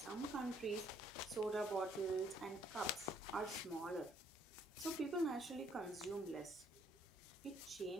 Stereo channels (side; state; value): both; normal; correlation 0.66